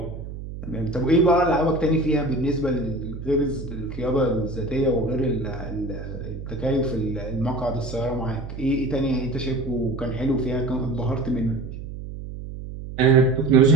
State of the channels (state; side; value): noise; right; hum, 10 dB below the sound